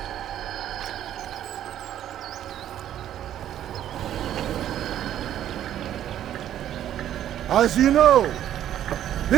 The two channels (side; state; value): left; quieter; 11.2 dB